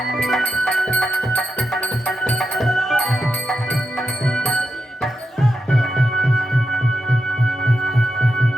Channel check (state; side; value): normal; both; correlation 0.87